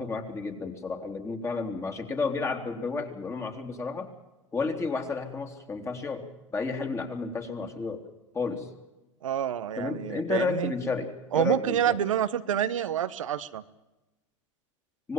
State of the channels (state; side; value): normal; both; correlation 0.34